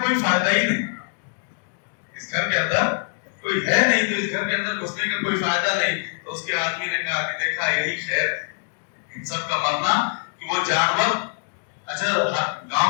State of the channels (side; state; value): right; silent; digital silence